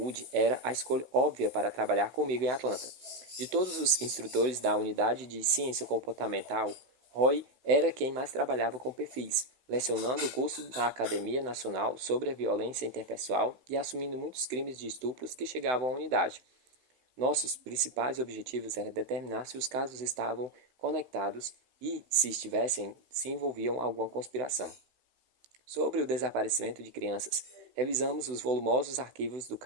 era a escolha óbvia para trabalhar comigo em Atlanta. De todos os instrutores da unidade de ciência comportamental, Roy era quem mais trabalhava com perfis, lecionando o curso na Academia Nacional sobre a Violência Interpessoal e assumindo muitos crimes de estupros que chegavam à unidade. Nossos principais objetivos era determinar se os casos estavam conectados e, se estivessem, se envolviam alguma conspiração. Sobre o desaparecimento de crianças, revisamos os volumosos arquivos do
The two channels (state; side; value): late; left; 16 ms